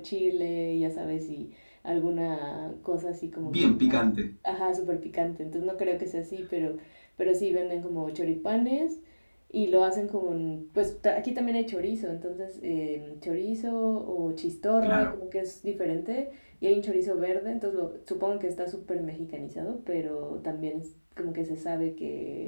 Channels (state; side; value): inverted; both; correlation -1.00